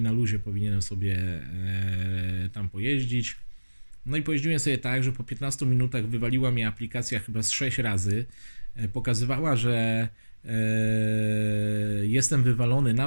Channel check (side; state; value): both; inverted; correlation -1.00